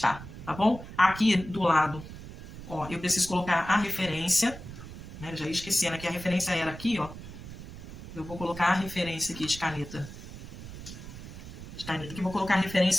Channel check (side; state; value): right; noise; rumble, 13 dB below the sound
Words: tá bom? Aqui do lado, ó, eu preciso colocar a referência, né? Eu já ia esquecendo que a referência era aqui, ó. Eu vou colocar a referência aqui de caneta. Aqui vou colocar a